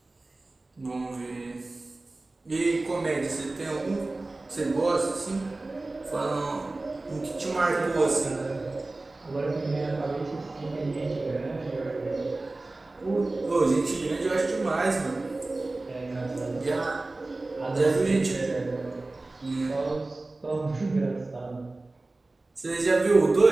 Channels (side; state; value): left; quieter; 3.1 dB